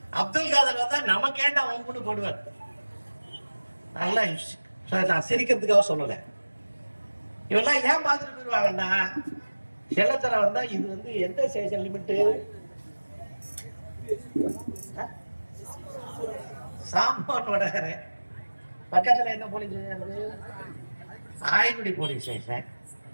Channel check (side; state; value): both; inverted; correlation -1.00